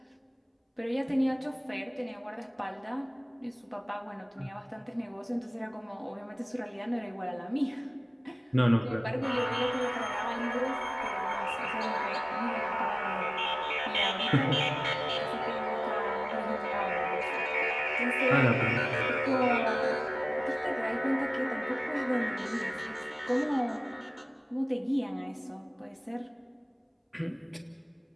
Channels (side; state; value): both; identical; correlation 1.00